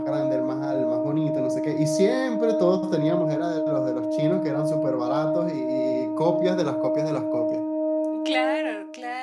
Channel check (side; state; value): both; identical; correlation 1.00